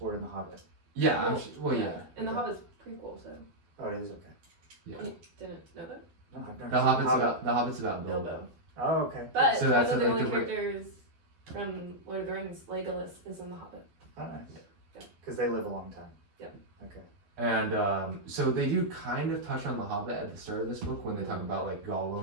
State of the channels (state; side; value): late; left; 12 ms